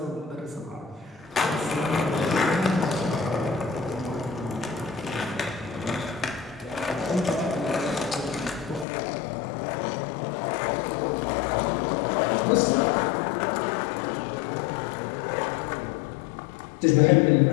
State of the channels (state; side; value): drops out; right; at 8.8 s